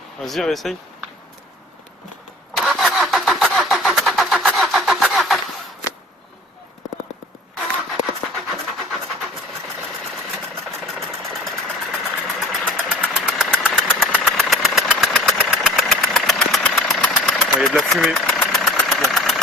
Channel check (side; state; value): both; normal; correlation 0.45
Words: Vas-y, réessaye. Il y a de la fumée.